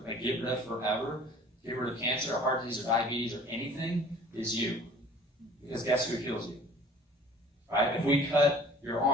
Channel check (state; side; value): normal; both; correlation 0.49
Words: like get rid of forever, get rid of cancer or heart disease or diabetes or anything, is you. Because guess who heals you? Right? If we cut your